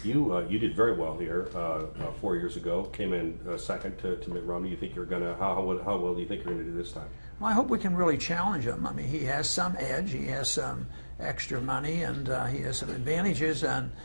you did very well here 4 years ago. Came in second to Mitt Romney. You think you're gonna how well do you think you're gonna do this time? Well, I hope we can really challenge him. I mean, he has some edge. He has some extra money, and he has some advantages, and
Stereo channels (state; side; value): inverted; both; correlation -1.00